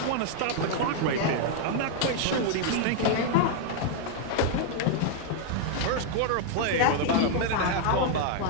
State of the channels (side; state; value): both; different; correlation 0.00